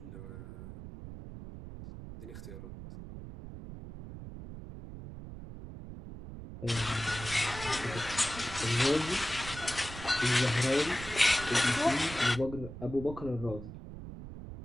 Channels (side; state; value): right; noise; rumble, 11 dB below the sound